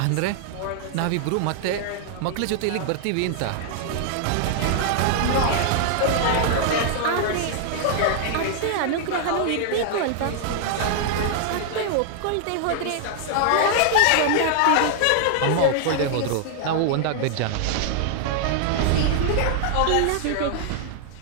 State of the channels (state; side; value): different; both; correlation -0.01